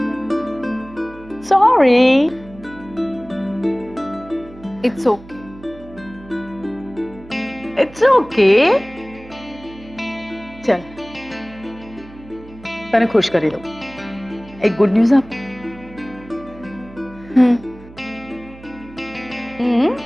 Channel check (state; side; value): noise; right; hum, 20 dB below the sound